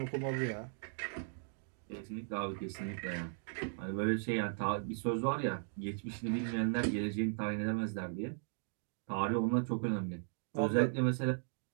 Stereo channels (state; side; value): silent; left; digital silence